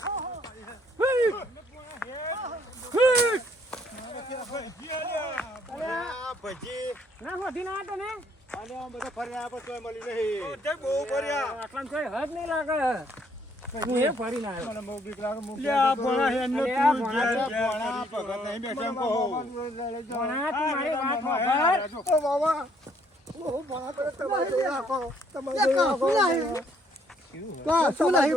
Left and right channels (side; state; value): both; normal; correlation 0.66